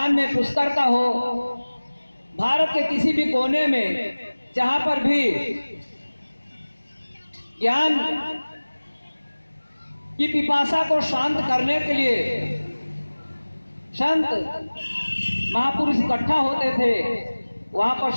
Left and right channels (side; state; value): both; inverted; correlation -1.00